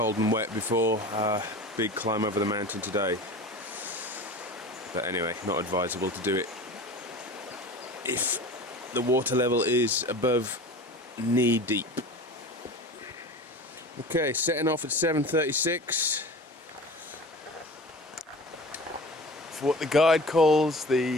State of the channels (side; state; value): both; normal; correlation 0.36